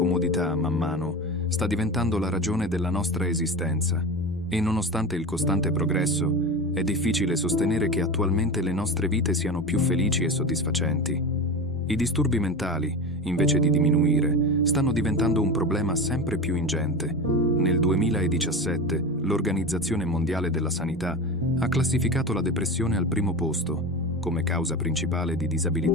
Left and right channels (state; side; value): normal; both; correlation 0.26